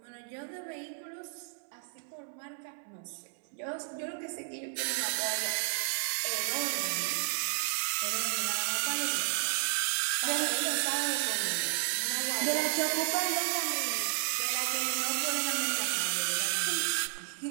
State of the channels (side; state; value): left; silent; 56 dB below the other